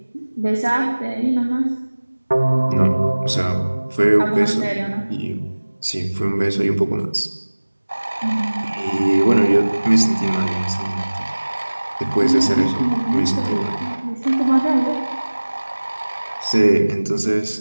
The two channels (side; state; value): both; inverted; correlation -1.00